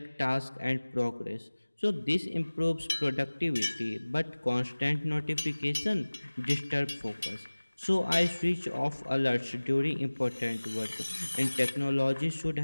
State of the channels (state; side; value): inverted; both; correlation -1.00